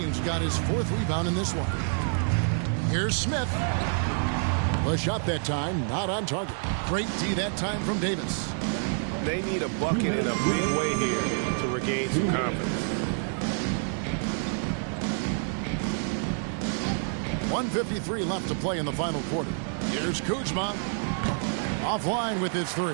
got his 4th rebound in this one. Here's Smith. The shot that time, not on target. Great D that time from Davis. They need a bucket in a big way here to regain some confidence. 1:53 left to play in the final quarter. Here's Kuzma. Offline with his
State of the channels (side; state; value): left; silent; 59 dB below the other